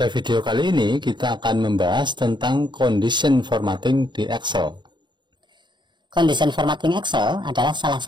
video kali ini kita akan membahas tentang condition formatting di Excel. Condition formatting Excel adalah salah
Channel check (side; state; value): left; late; 0.22 ms